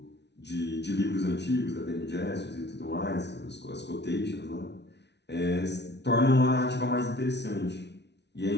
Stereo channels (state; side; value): late; right; 0.50 ms